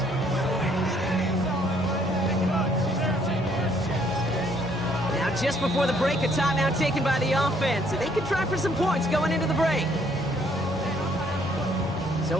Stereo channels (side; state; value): both; normal; correlation 0.66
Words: Now just before the break, a timeout taken by the offense. And they could try for some points going into the break.